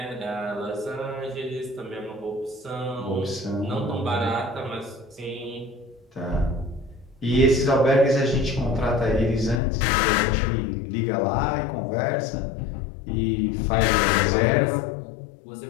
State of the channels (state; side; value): drops out; right; at 9.6 s